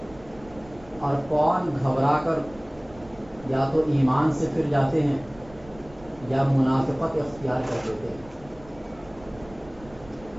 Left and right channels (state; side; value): noise; right; rumble, 22 dB below the sound